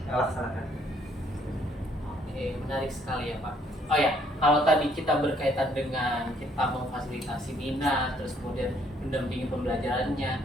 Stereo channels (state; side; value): normal; both; correlation 0.66